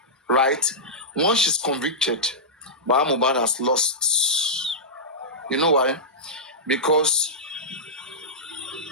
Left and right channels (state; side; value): normal; both; correlation -0.13